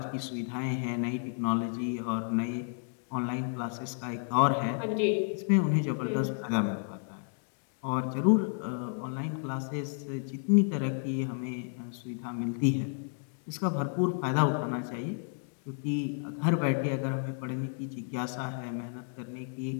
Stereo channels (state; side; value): silent; right; 57 dB below the other